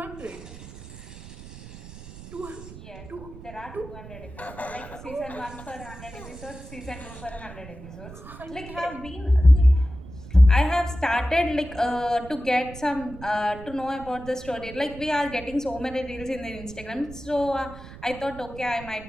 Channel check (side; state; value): right; noise; rumble, 15 dB below the sound